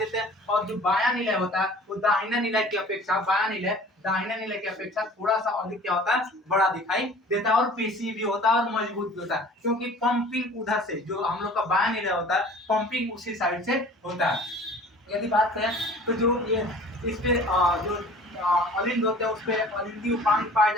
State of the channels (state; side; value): normal; both; correlation 0.46